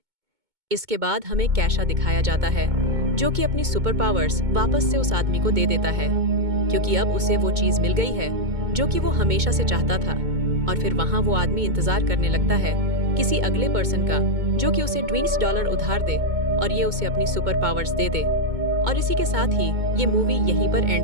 इसके बाद हमें कैशा दिखाया जाता है जो कि अपनी सुपर पावर्स वापस से उस आदमी को दे देता है क्योंकि अब उसे वो चीज मिल गई है जो कि वो हमेशा से चाहता था। और फिर वहाँ वो आदमी इंतजार करने लगता है किसी अगले पर्सन का जो कि उसे $20 उधार दे और ये उसे अपनी सुपर पावर्स दे दे। और इसी के साथ ही ये मूवी यहीं पर एंड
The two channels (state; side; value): late; left; 2.2 ms